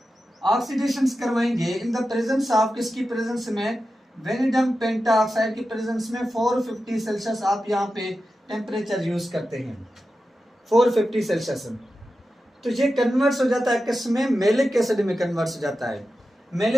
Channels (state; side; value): normal; both; correlation 0.92